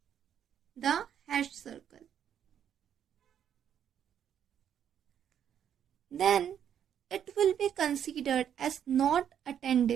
the hash circle, then it will be considered as not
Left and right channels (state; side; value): quieter; left; 9.2 dB